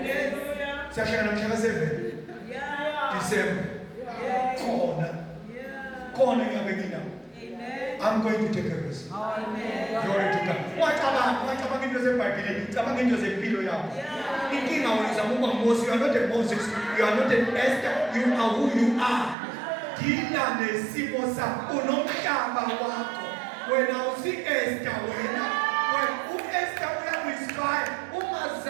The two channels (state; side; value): drops out; left; at 19.4 s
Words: Siyashaya mhla ka-7. December. Khona ngiyabe nginawo. I'm going to take a risk. Amen. Glory to God. Wacabanga into zeBhayibheli, cabanga into zempilo yakho. Inkinga wena uzama ukuba Moses, you are not a Moses, you are not an Esther, you are who you are. Dila nesimo sakho, unomhlaba wakho. Wena usi-Esther wena. U-Esther uyaku-inspire,